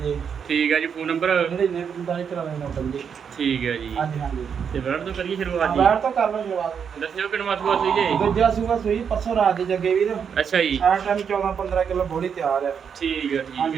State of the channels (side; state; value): left; quieter; 7.1 dB